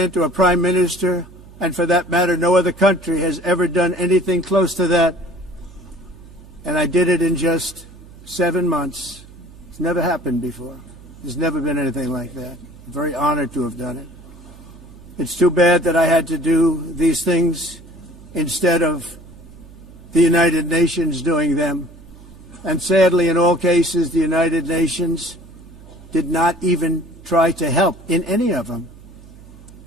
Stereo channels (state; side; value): noise; right; hum, 20 dB below the sound